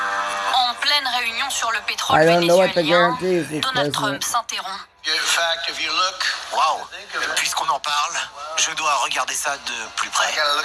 En pleine réunion sur le pétrole I don't know what the vénézuélien, guarantee is, Donald President. Trump s'interrompt. Waouh. Puisqu'on en parle, je dois regarder ça de plus près.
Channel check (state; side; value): identical; both; correlation 1.00